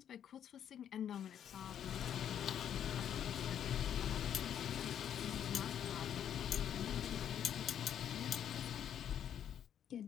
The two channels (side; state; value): right; quieter; 9.5 dB